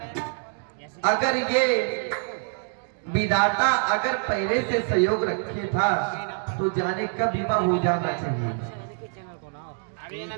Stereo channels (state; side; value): silent; left; 57 dB below the other